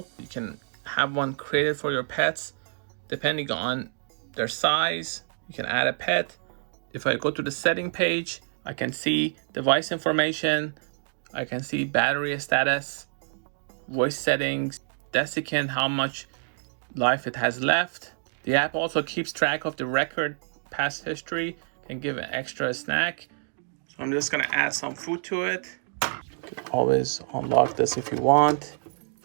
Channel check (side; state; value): left; silent; digital silence